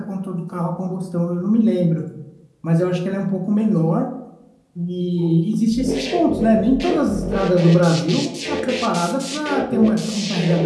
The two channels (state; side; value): identical; both; correlation 1.00